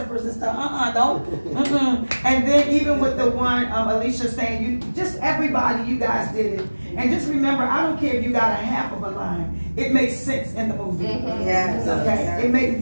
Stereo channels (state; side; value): inverted; both; correlation -1.00